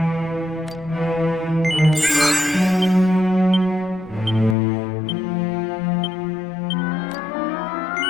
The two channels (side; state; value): right; drops out; at 4.5 s